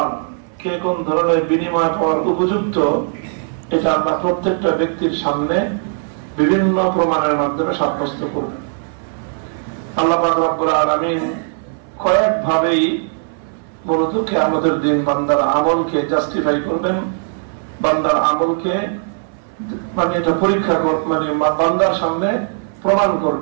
কে কোন ধরনের বিনিময় পাওয়ার উপযুক্ত, এটা আল্লাহ প্রত্যেকটা ব্যক্তির সামনে বিভিন্ন প্রমাণের মাধ্যমে সাব্যস্ত করবেন। আল্লাহ পাক রব্বুল আলামিন কয়েকভাবেই মূলত কিয়ামতের দিন বান্দার আমলকে জাস্টিফাই করবেন, বান্দার আমলকে মানে এটা পরীক্ষা মানে বান্দার সামনে প্রমাণ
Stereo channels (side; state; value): left; silent; 62 dB below the other